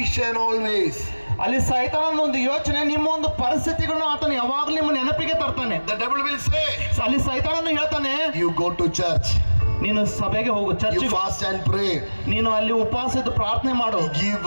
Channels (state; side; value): inverted; both; correlation -1.00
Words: always. ಅಲ್ಲಿ ಸೈತಾನನ ಒಂದು ಯೋಚನೆ, ನಿಮ್ಮ ಒಂದು ಪರಿಸ್ಥಿತಿಗಳನ್ನು ಆತನು ಯಾವಾಗಲೂ ನಿಮ್ಮ ನೆನಪಿಗೆ ತರ್ತಾನೆ. The devil will say, ಅಲ್ಲಿ ಸೈತಾನನು ಹೇಳ್ತಾನೆ, you go to church, ನೀನು ಸಭೆಗೆ ಹೋಗು, you ಚರ್ಚಿಗೆ fast and pray, ನೀನು ಅಲ್ಲಿ ಉಪವಾಸ ಇದ್ದು ಪ್ರಾರ್ಥನೆ ಮಾಡು, give